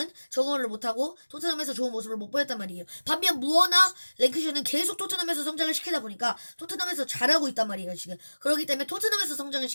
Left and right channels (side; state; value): both; inverted; correlation -1.00